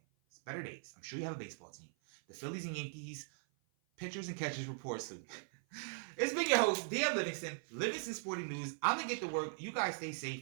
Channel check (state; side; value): silent; left; 51 dB below the other